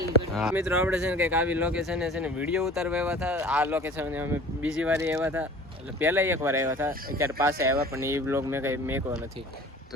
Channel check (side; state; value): both; normal; correlation 0.45